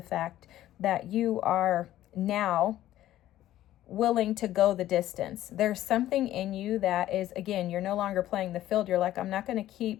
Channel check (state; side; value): quieter; right; 13.6 dB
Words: fact that you are now willing to go the distance. There's something in you that is, again, you're no longer playing the field. You're like, I'm not going to